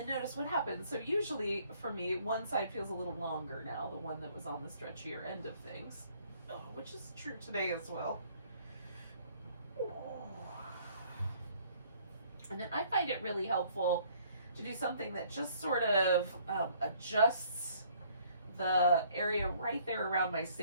notice what happens. So usually for me, one side feels a little longer now, the one that was on the stretchier end of things, which is true today as well. Oh. And then I find it really helpful to do something that just sort of adjusts the area right there around my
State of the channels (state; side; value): inverted; both; correlation -0.61